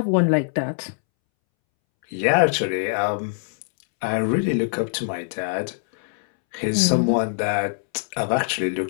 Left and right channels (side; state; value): right; silent; 64 dB below the other